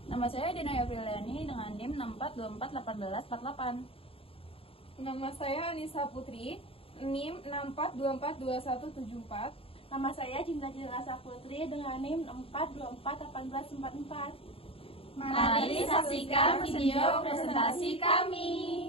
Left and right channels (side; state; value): right; late; 0.27 ms